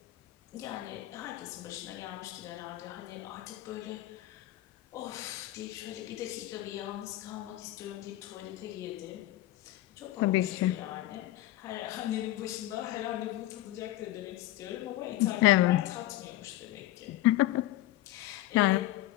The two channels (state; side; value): quieter; right; 15.6 dB